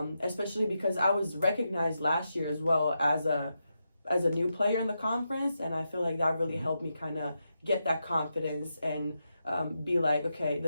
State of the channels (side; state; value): both; inverted; correlation -0.86